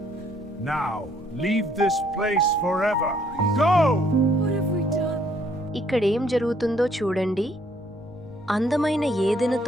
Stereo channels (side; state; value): left; noise; rumble, 24 dB below the sound